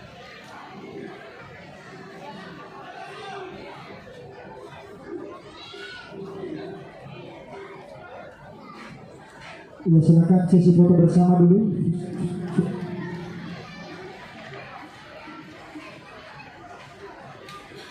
Ya, silakan sesi foto bersama dulu.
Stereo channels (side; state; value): both; identical; correlation 1.00